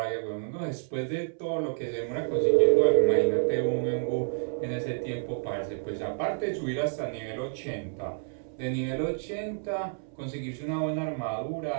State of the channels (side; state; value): left; silent; 58 dB below the other